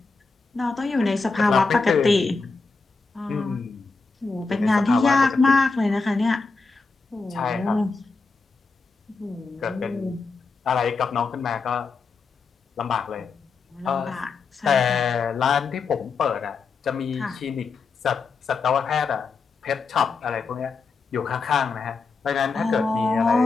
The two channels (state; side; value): quieter; right; 4.4 dB